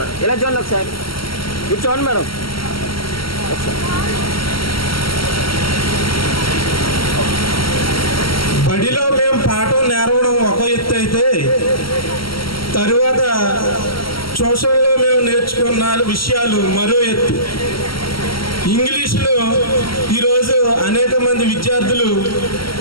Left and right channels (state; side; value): late; right; 0.74 ms